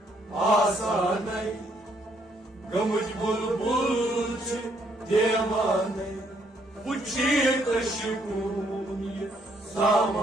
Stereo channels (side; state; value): both; normal; correlation 0.70